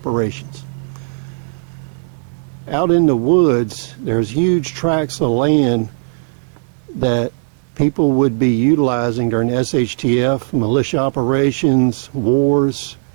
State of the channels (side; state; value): left; silent; digital silence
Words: Out in the woods, there's huge tracts of land that people would be utilizing during SHTF, militia operations, wars,